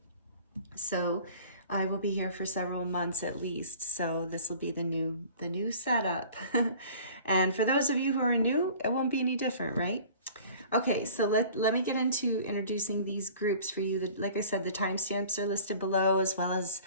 So I will be here for several months at least, so this will be the new setup. And for those of you who are new, it won't be any different, right? Okay, so let me get into introducing these groups for you. Like I said, the timestamps are listed below, as well as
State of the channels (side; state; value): both; inverted; correlation -0.47